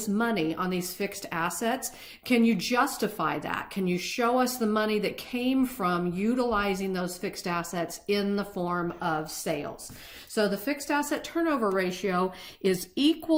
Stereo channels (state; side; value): identical; both; correlation 1.00